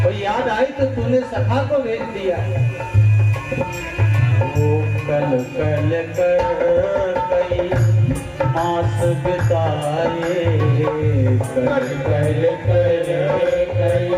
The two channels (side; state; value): both; identical; correlation 1.00